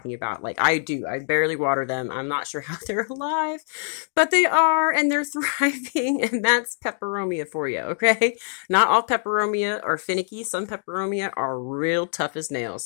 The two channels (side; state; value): right; silent; 63 dB below the other